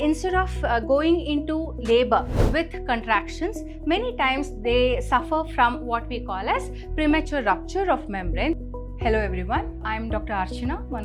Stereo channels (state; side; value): identical; both; correlation 1.00